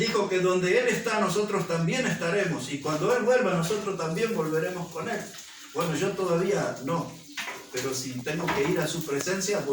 que donde Él está nosotros también estaremos, y cuando Él vuelva nosotros también volveremos con Él. Bueno, yo todavía no, pero si tengo que ir a su presencia,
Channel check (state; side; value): identical; both; correlation 1.00